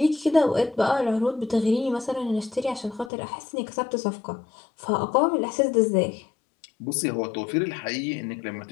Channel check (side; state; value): right; drops out; at 3.1 s